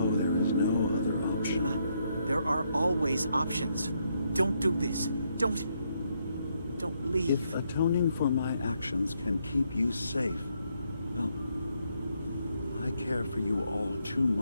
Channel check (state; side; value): inverted; both; correlation -0.77